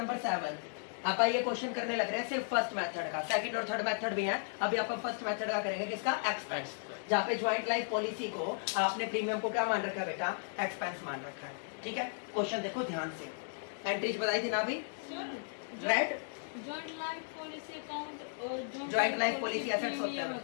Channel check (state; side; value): silent; right; digital silence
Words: 7। आप ये क्वेश्चन करने लग रहे हैं सिर्फ फर्स्ट मेथड का। सेकंड और थर्ड मेथड भी है। अभी आप फर्स्ट मेथड का करेंगे, किसका? एक्सपेंस। जहाँ पे ज्वाइंट लाइफ पॉलिसी को आपने प्रीमियम को क्या मान रखा है बेटा? एक्सपेंस मान रखा है, ठीक है। क्वेश्चन देखो ध्यान से। एंट्रीज बताई थी ना अभी? Right, joint life policy account और ज्वाइंट लाइफ पॉलिसी एसेट्स होते प्रीमियम हैं,